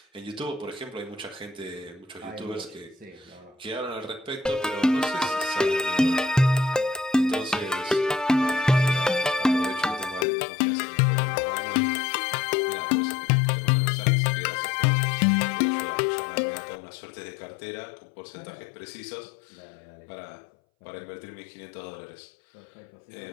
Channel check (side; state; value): right; drops out; at 10.2 s